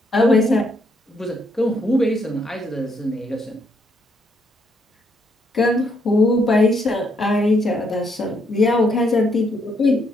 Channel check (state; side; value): normal; both; correlation 0.74